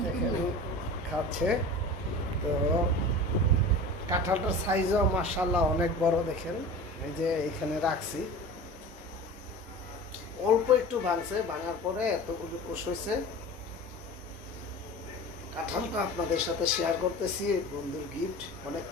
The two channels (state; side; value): normal; both; correlation 0.35